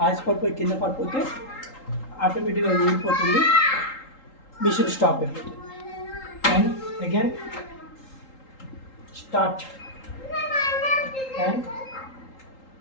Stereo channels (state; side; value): late; right; 3.8 ms